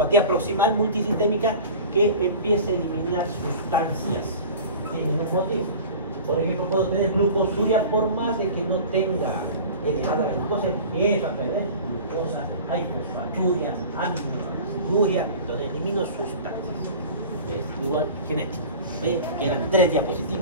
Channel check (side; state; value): both; inverted; correlation -0.38